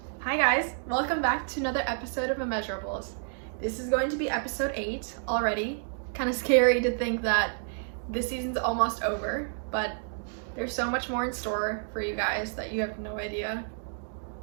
Hi guys, welcome back to another episode of Immeasurables. This is going to be episode 8 already. Kind of scary to think that this season's almost over, but there's so much more in store for you guys that you have no idea.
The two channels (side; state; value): left; silent; digital silence